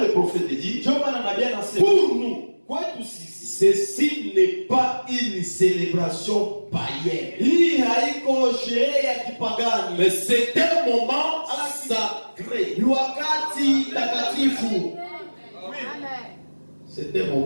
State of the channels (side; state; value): both; inverted; correlation -1.00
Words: prophète dit, Ndio maana nabii anasema pour nous, kwetu sisi ceci n'est pas une célébration païenne, hii haiko sherehe ya kipagani. mais c'est un moment sacré. Ni wakati takatifu. C'est un